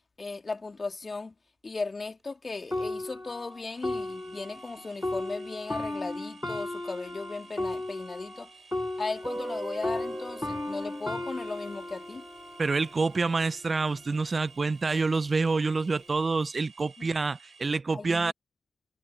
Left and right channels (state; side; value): normal; both; correlation 0.94